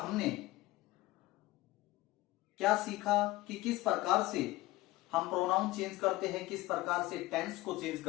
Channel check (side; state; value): right; quieter; 18.4 dB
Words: क्या सीखा कि किस प्रकार से हम प्रोनाउन चेंज करते हैं, किस प्रकार से टेंस को चेंज